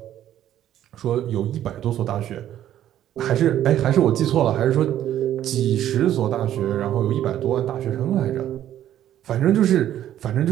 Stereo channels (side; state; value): left; quieter; 11.7 dB